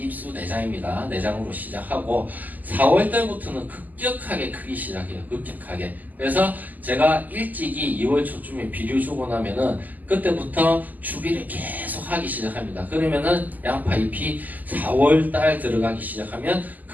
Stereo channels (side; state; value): left; late; 0.082 ms